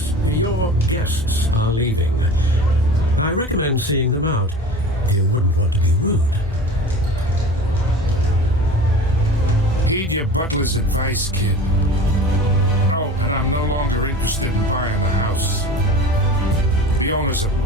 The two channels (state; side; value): normal; both; correlation 0.37